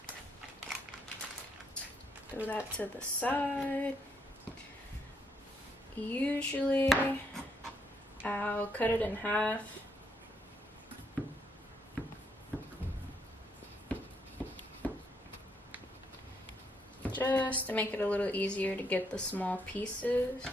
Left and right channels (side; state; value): both; normal; correlation 0.74